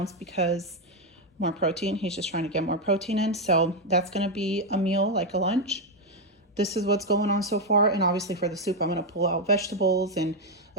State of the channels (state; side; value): normal; both; correlation 0.04